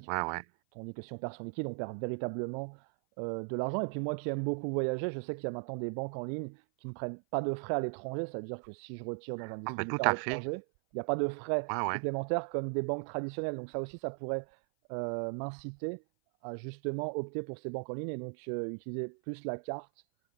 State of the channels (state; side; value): silent; left; 53 dB below the other